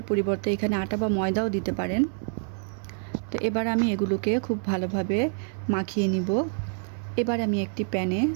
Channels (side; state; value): left; silent; 60 dB below the other